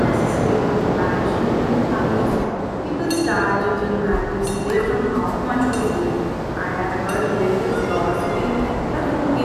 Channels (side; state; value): both; identical; correlation 1.00